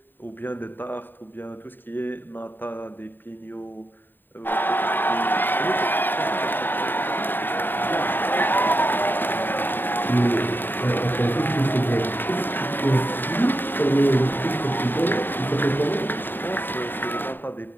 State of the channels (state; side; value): late; right; 0.093 ms